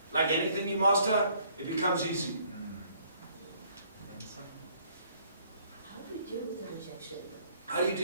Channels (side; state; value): both; inverted; correlation -0.63